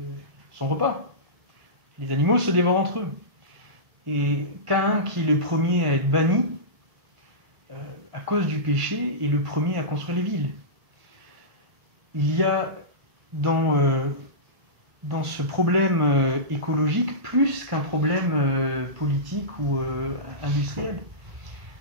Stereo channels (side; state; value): left; late; 1.7 ms